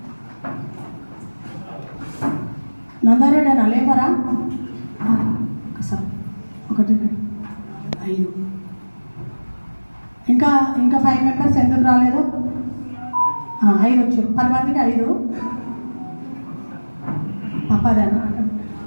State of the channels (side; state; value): both; inverted; correlation -1.00